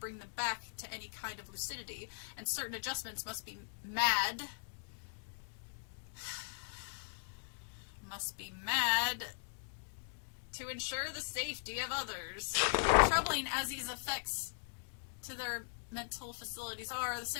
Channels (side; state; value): right; silent; digital silence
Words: them back to any kind of lucidity, and certain adjustments must be mad to ensure the safety of others. Troubling as these effects to their mental facilities are, the